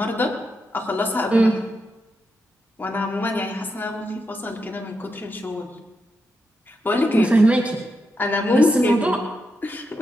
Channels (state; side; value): normal; both; correlation 0.85